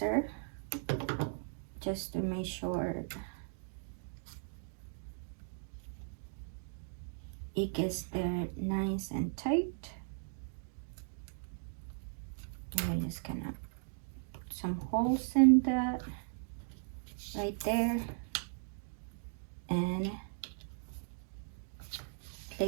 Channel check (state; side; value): silent; left; digital silence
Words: just to make sure it gets there nice and tight. And I'm just gonna put some holes in that right there and